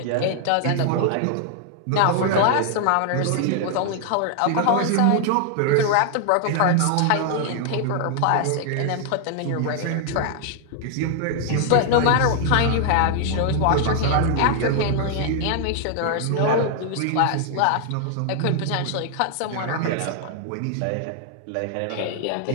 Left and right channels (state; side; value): different; both; correlation 0.00